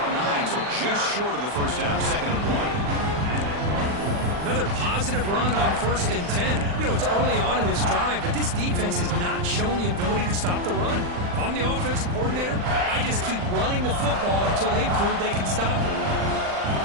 9, so just short of the first down, 2nd and 1. Another positive run on 1st and 10. You know, it's early on in this drive, but this defense has not shown the ability to stop the run. If I'm the offensive coordinator, I just keep running the football until they prove they can stop it.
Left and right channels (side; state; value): left; late; 40 ms